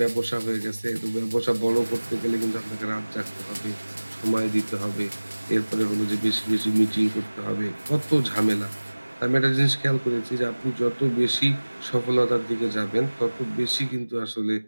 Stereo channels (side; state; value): both; inverted; correlation -1.00